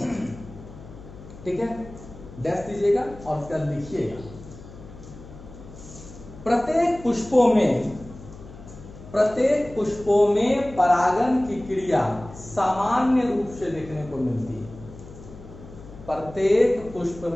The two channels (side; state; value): left; noise; hum, 16 dB below the sound